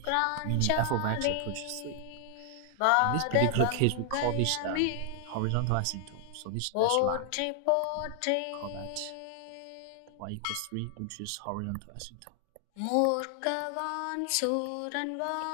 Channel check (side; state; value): both; different; correlation 0.00